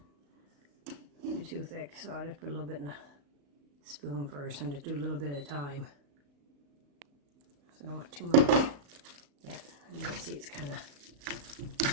too thick, so I'll just put a little bit in a spoon first and just do a little bit at a time. So I don't want too much yet. And you can see it's kind of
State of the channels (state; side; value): late; left; 35 ms